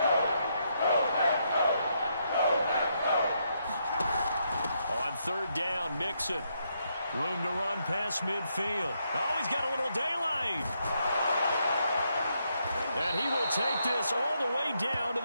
On third down, Mixon. Room to run past midfield. Oh, he's got a little daylight. And he will take this all the way down to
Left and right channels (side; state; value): both; inverted; correlation -0.78